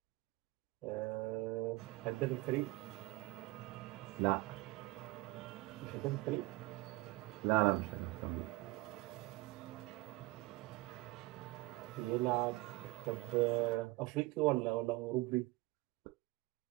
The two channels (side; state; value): left; quieter; 21.4 dB